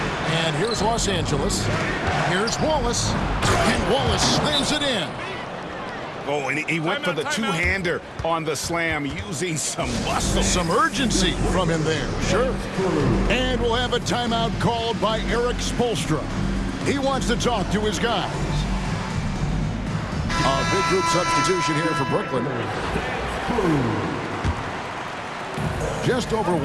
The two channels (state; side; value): identical; both; correlation 1.00